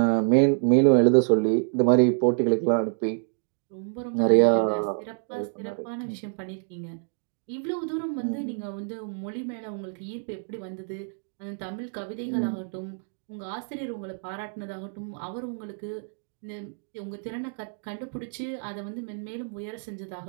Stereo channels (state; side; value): silent; left; digital silence